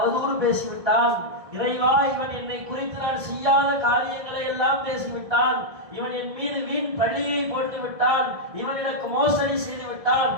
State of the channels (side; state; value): left; late; 1.6 ms